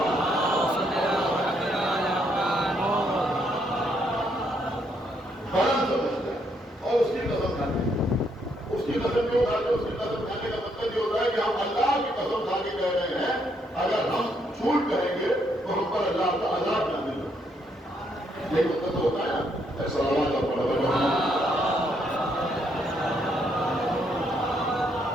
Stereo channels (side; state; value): both; normal; correlation 0.73